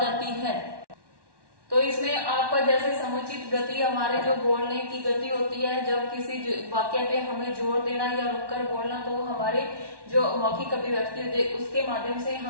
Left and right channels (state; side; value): late; left; 1.1 ms